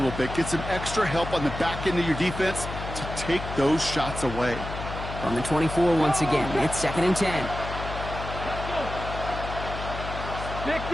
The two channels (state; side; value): noise; left; hum, 7 dB below the sound